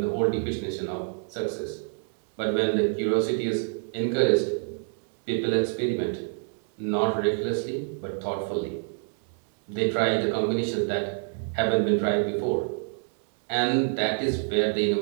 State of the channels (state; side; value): silent; left; 60 dB below the other